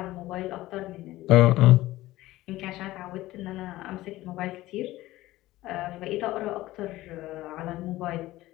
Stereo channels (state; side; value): quieter; right; 17.0 dB